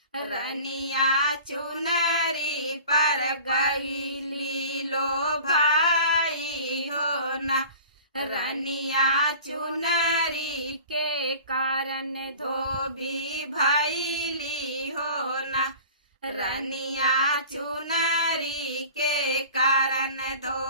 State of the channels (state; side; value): inverted; both; correlation -0.42